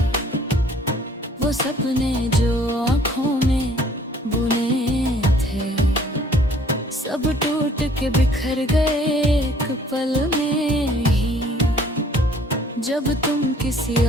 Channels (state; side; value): normal; both; correlation 0.57